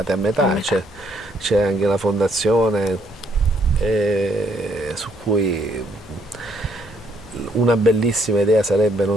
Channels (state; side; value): normal; both; correlation 0.69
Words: a metà, c'è anche la fondazione su cui una bellissima idea sarebbe,